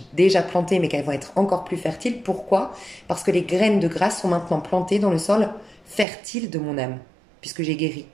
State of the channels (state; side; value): drops out; left; at 6.1 s